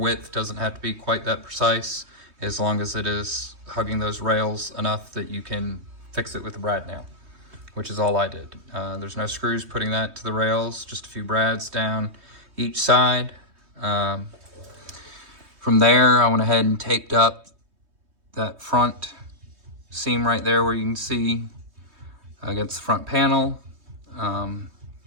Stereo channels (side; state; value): left; late; 3.2 ms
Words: doesn't have to be quite that precise, as long as it is hugging those rails enough that you can fix it with a brad nail, which is all I did. There's no screws putting that to the rails, just a few brads down each side. From there, I went ahead and taped up that front seam right there where you can see against the front panel.